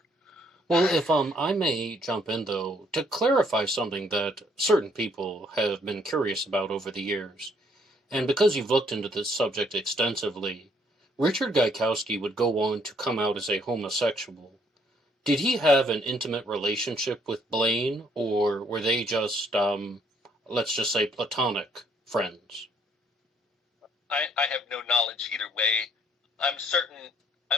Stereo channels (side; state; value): both; normal; correlation 0.66